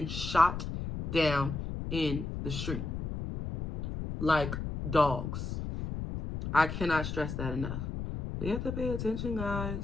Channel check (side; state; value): left; noise; rumble, 5 dB below the sound